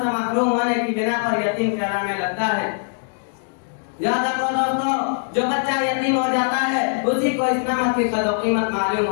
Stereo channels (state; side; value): silent; right; digital silence